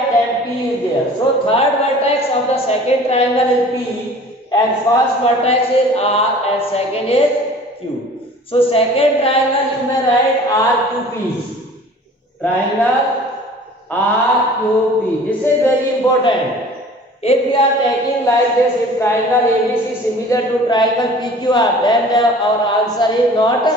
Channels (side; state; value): both; normal; correlation 0.46